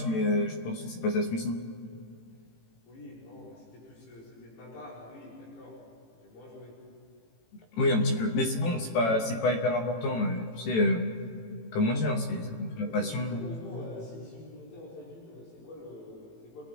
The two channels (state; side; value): late; right; 18 ms